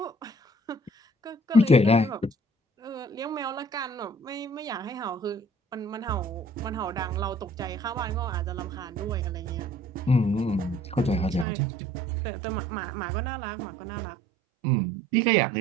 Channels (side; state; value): left; drops out; at 11.5 s